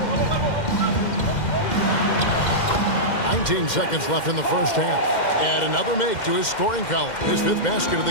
19 seconds left in the first half. And another make to his scoring column. His 5th basket of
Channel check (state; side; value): late; right; 2.1 ms